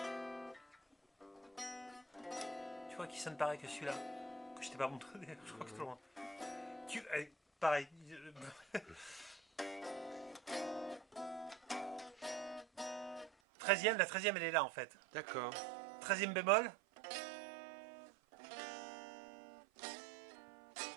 Tu vois qui sonne pareil que celui-là que je t'ai pas montré. Je crois que je te le montre. Allez, pareil. 13e, la 13e elle est là en fait. D'accord. 13e bémol.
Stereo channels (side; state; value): left; drops out; at 13.3 s